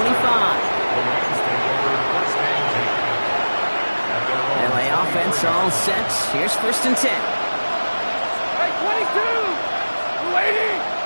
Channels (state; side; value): inverted; both; correlation -1.00